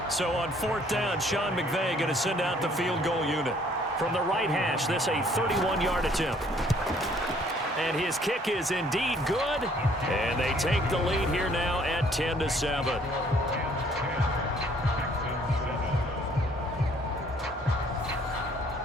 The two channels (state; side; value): normal; both; correlation 0.61